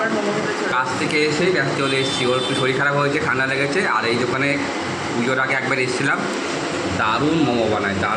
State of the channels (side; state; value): both; identical; correlation 1.00